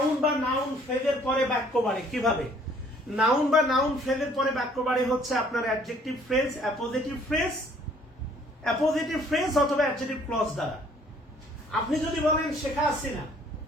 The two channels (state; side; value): normal; both; correlation 0.59